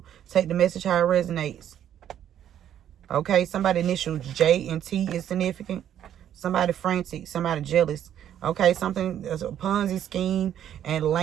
Take the message how it resonates. Okay, somebody initial J and T is significant. Somebody frantic, somebody jealous. Okay, something as a Ponzi scheme and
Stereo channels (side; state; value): left; quieter; 10.4 dB